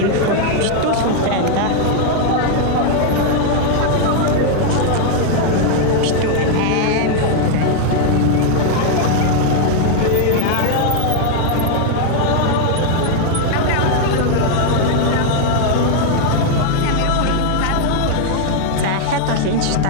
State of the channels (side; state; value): both; different; correlation 0.00